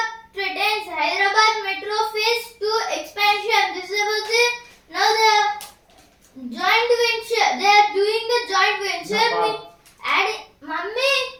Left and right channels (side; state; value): both; identical; correlation 1.00